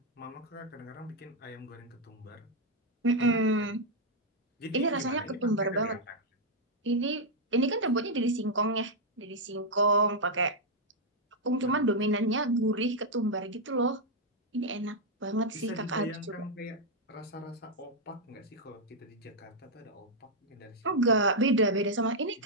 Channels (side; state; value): both; normal; correlation -0.02